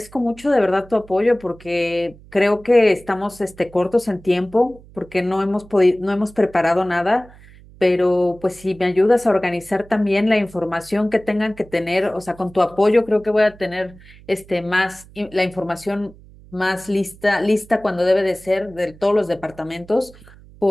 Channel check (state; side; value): noise; right; hum, 23 dB below the sound